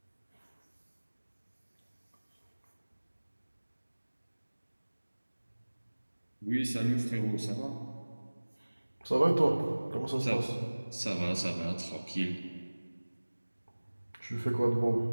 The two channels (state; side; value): inverted; both; correlation -1.00